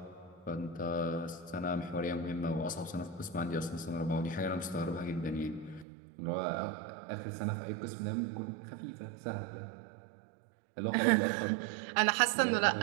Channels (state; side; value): drops out; left; at 5.9 s